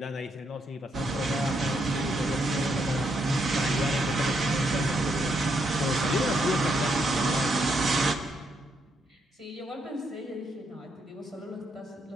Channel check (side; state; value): both; normal; correlation 0.77